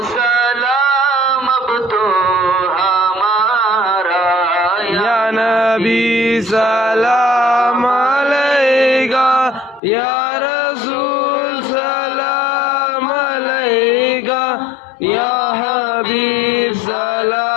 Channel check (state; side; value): drops out; right; at 9.8 s